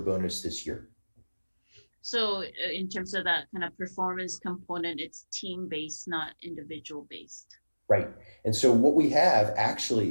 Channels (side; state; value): both; inverted; correlation -1.00